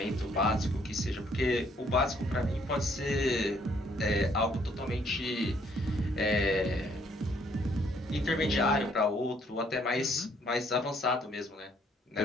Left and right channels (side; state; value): both; normal; correlation 0.66